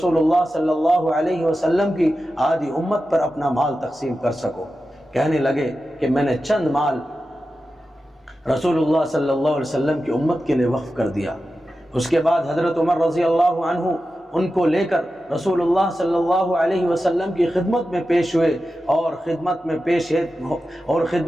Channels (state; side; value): normal; both; correlation 0.92